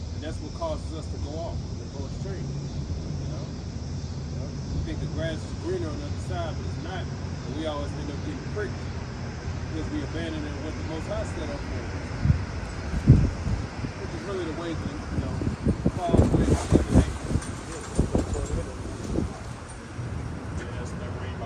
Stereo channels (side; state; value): both; identical; correlation 1.00